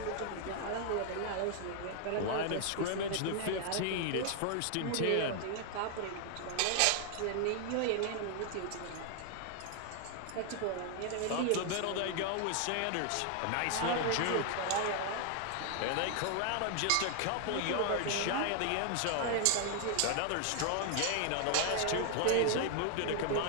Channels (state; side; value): different; both; correlation 0.00